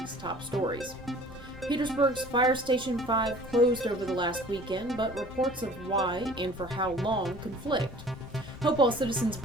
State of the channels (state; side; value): noise; left; rumble, 17 dB below the sound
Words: top stories. Petersburg's Fire Station 5 closed over the last weekend, but reports of why and for how long conflict. Hopewell citizens